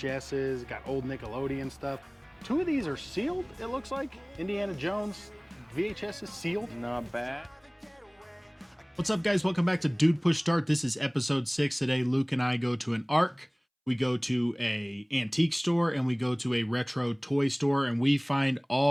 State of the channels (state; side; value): identical; both; correlation 1.00